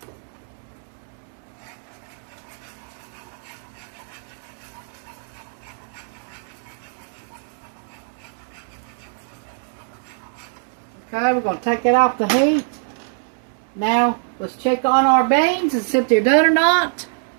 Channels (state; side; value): silent; left; 63 dB below the other